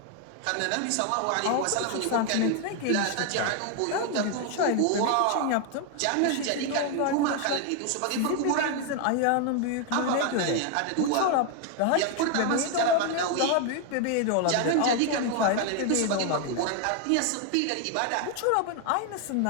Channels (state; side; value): different; both; correlation 0.01